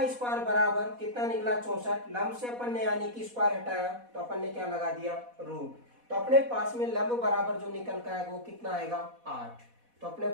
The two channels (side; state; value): left; late; 4.1 ms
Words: स्क्वायर बराबर कितना निकला 64। लंब से अपन ने यानी कि स्क्वायर हटाया तो अपन ने क्या लगा दिया रूट। तो अपने पास में लंब बराबर जो निकल का आएगा वो कितना आएगा 8। तो अपने